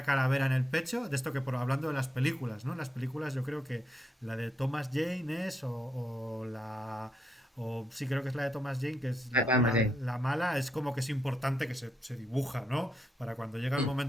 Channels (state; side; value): normal; both; correlation 0.80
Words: calavera en el pecho. De esto que hablando de las películas, ¿no? Las películas yo creo que la de Thomas Jane es, o la... O sí, creo que es la de Thomas Jane, que es la mala, es como que es importante que se dibuja, ¿no? Para cuando llega el